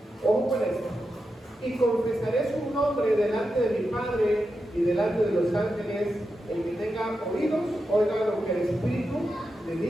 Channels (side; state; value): both; normal; correlation 0.88